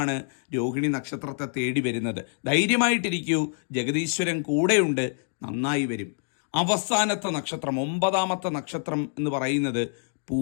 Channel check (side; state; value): right; silent; 61 dB below the other